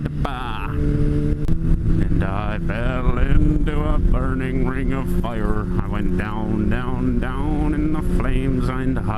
I fell into a burning ring of fire. I went down, down, down in the flames and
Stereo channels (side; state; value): both; identical; correlation 1.00